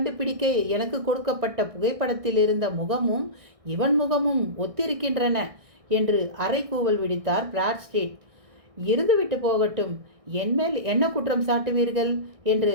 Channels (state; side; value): late; left; 1.6 ms